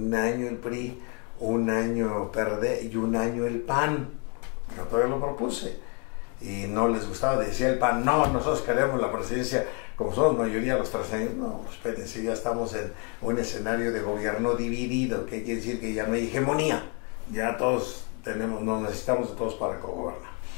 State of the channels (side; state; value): right; quieter; 34.9 dB